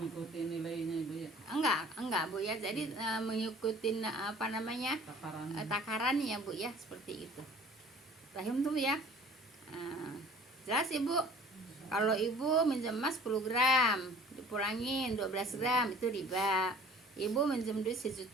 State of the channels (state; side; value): normal; both; correlation 0.49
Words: nilainya Ibu ya. Enggak Bu ya. Jadi mengikuti apa namanya? Takarannya Bu ya, seperti itu. Paham tuh Bu ya? Jelas Ibu? Kalau Ibu minjem emas 10 gram, dipulangin 12 gram, itu riba. Ibu minjem duit 1